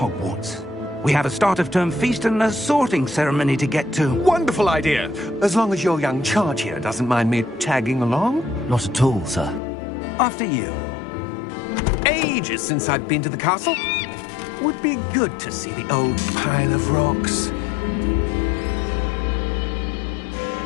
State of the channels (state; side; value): drops out; right; at 9.6 s